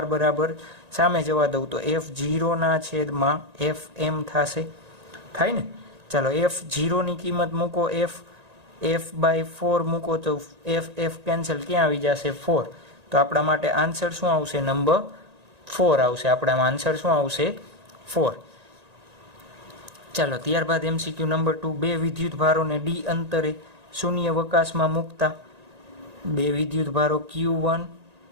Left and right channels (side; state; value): left; late; 1.9 ms